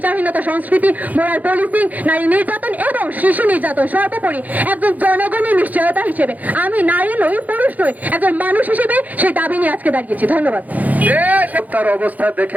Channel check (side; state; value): left; late; 0.079 ms